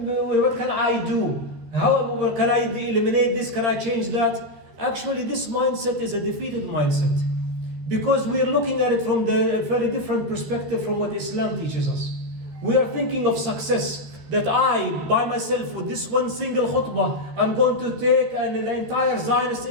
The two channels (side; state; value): left; late; 14 ms